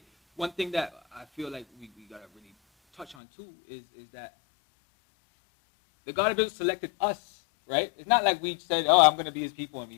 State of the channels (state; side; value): drops out; right; at 3.2 s